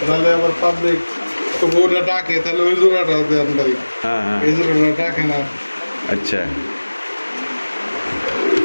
তাহলে আবার পাবলিক তো বউটা ডাকে, তাহলে ওই জোড়াটা দেন ভাই। হ্যাঁ হ্যাঁ, এই জোড়াটা ডাকে না। আচ্ছা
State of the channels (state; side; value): inverted; both; correlation -1.00